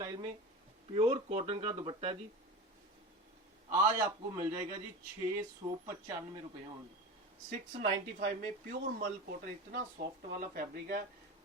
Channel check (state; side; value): normal; both; correlation 0.28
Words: में प्योर कॉटन का दुपट्टा है जी। आज आपको मिल जाएगा जी 695 रुपए ओनली, 695 में प्योर मल कॉटन। इतना सॉफ्ट वाला फैब्रिक है,